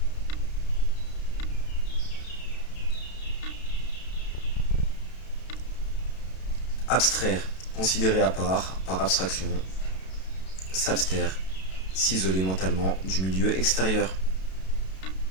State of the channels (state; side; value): late; right; 32 ms